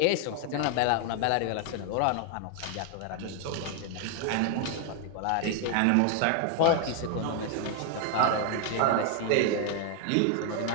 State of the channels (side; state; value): both; different; correlation 0.00